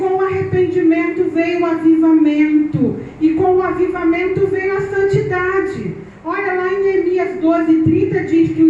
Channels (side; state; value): both; identical; correlation 1.00